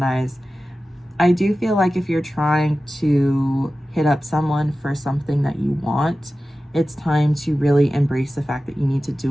I do feel like if you're trying to hit up someone for something that you want, it's time to really embrace the fact that you need to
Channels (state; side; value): normal; both; correlation 0.95